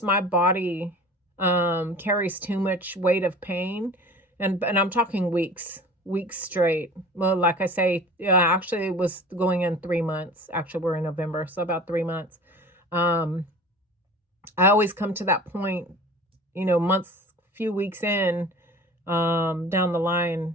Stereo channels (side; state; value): both; normal; correlation 0.41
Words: my body carries too much weight of pain, and I'm talking weeks straight. Well, like I say, actually it was going in 3 months. Actually, we're in November, so about 3 months. I always come to that point, months, few weeks in, down the line,